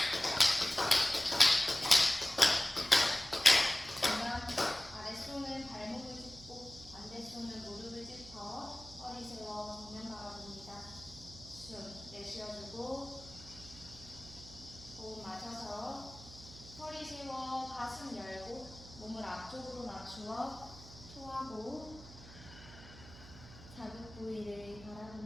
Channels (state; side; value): noise; right; hum, 17 dB below the sound